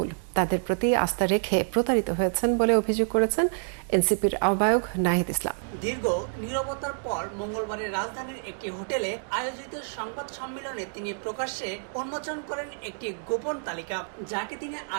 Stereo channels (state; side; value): silent; left; digital silence